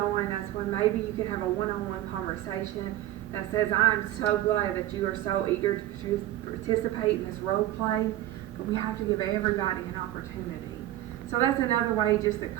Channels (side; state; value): left; quieter; 14.1 dB